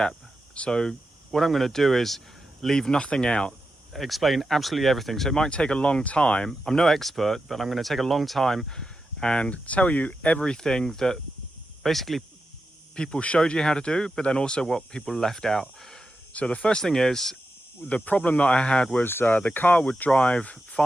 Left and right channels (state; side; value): normal; both; correlation 0.89